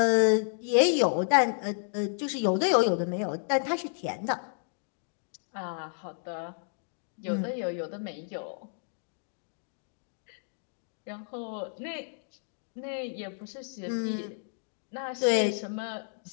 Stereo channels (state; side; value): silent; right; digital silence